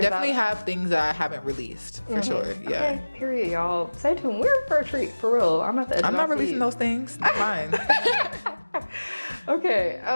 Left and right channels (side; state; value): both; inverted; correlation -1.00